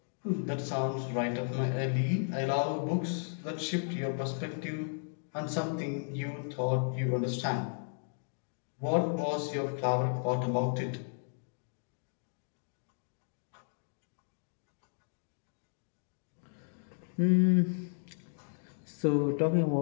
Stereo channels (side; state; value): right; silent; digital silence